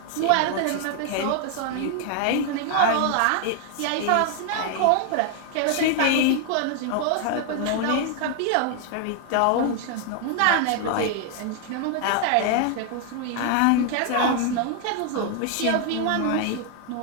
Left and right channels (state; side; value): different; both; correlation 0.00